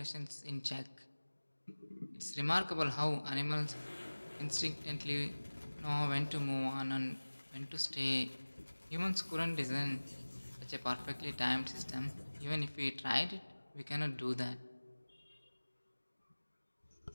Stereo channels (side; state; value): both; inverted; correlation -1.00